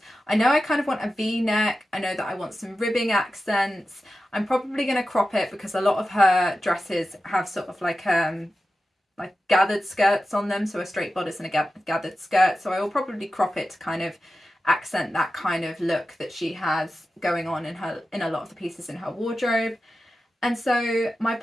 I know I kind of want a V-neck. I know that I want some ribbing accents. I'm probably going to crop it because a lot of her dresses have sort of like gathered skirts on them, so a straight bodice and a gathered skirt. So I will probably crop it to kind of accent that kind of look that she has going on in a lot of the pieces in her wardrobe. And so my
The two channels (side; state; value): both; normal; correlation 0.93